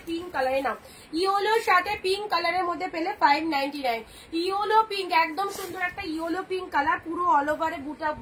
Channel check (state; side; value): identical; both; correlation 1.00